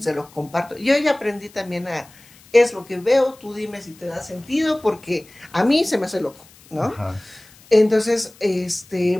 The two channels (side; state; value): left; noise; hiss, 25 dB below the sound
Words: lo comparto. Yo ya aprendí también es lo que veo, tú dime si te da sentido, porque a mí se me hace loco, ¿no? Ajá. Entonces,